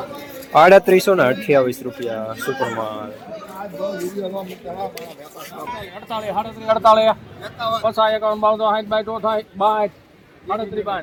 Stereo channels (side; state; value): both; identical; correlation 1.00